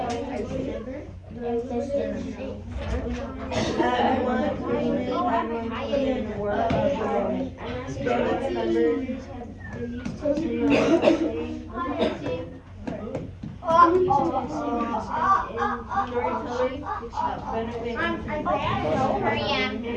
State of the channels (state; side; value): identical; both; correlation 1.00